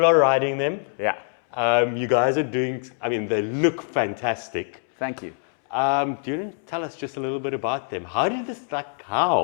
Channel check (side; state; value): right; silent; 63 dB below the other